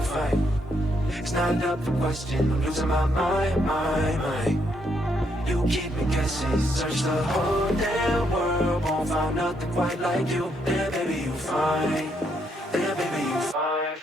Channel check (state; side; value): normal; both; correlation 0.75